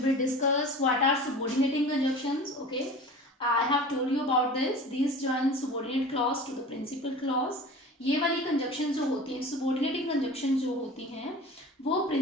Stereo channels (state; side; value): normal; both; correlation 0.38